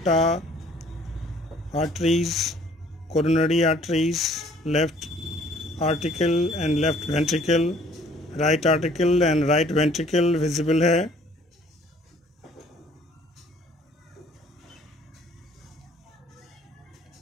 arteries, coronary arteries, left article and left ventricle, right article and right ventricle visible है।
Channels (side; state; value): both; normal; correlation 0.57